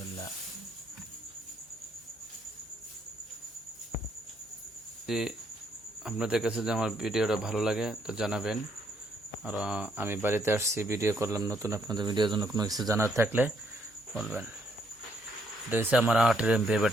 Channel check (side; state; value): both; normal; correlation 0.71